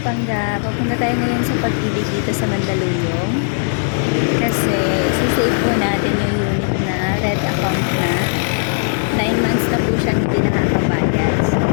Pangga, papunta tayo ngayon sa pag-ibig dito sa Mandaluyong kasi sisave po natin yung unit na red account na 9 months na po siyang hindi nakakabayad. So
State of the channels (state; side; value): silent; right; digital silence